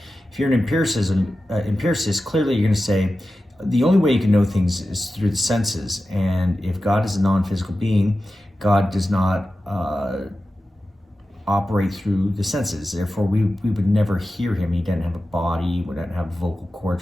If you're an empiricist, clearly you're going to say the only way you can know things is through the senses. And if God is a non-physical being, God does not operate through the senses. Therefore, we would never hear him. He doesn't have a body. We don't have vocal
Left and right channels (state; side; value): normal; both; correlation 0.93